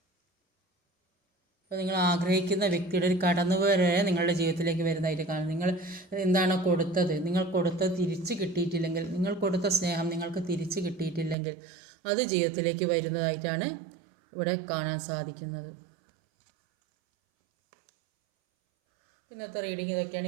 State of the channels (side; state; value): left; drops out; at 11.4 s